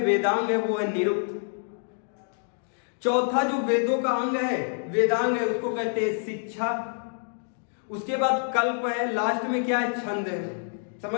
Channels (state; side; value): silent; right; 60 dB below the other